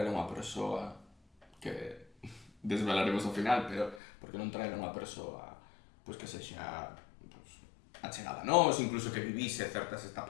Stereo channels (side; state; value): right; drops out; at 4.0 s